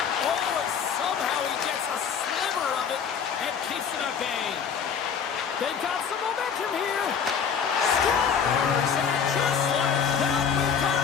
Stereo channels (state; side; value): quieter; right; 7.0 dB